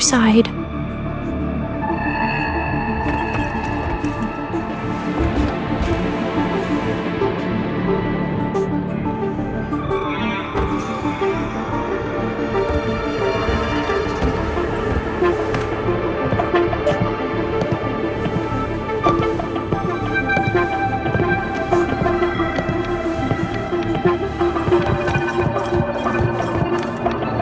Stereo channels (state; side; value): identical; both; correlation 1.00